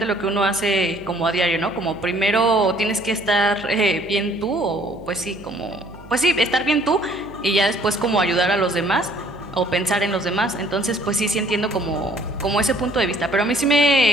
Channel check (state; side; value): noise; right; hum, 19 dB below the sound